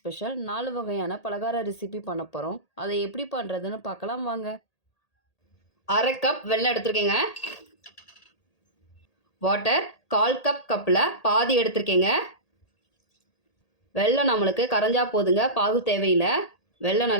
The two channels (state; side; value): late; right; 1.8 ms